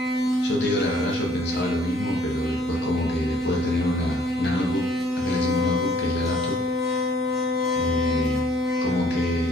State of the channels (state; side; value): normal; both; correlation 0.60